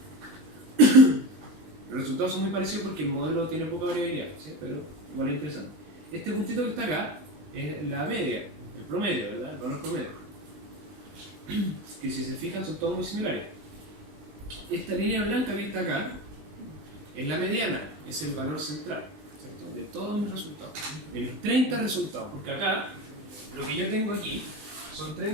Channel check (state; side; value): late; left; 19 ms